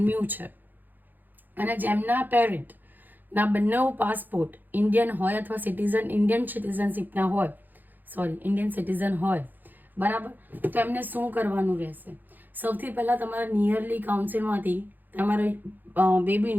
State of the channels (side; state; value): left; late; 0.087 ms